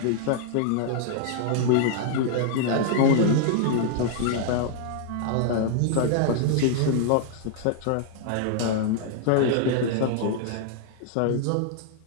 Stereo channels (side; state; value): both; different; correlation -0.01